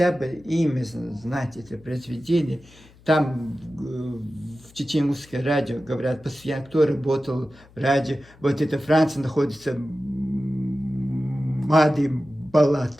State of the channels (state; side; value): noise; left; hum, 25 dB below the sound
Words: бы имя знать это произведение. Там в чеченское радио говорят, постоянно, кто работал в радио. Вот это Франция находится, Мади